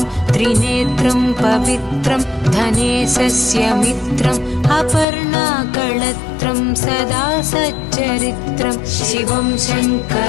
त्रिनेत्रं पवित्रं धनेशस्य मित्रम् अपर्णाकळत्रं सदा सच्चरित्रं शिवं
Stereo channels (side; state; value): right; drops out; at 5.1 s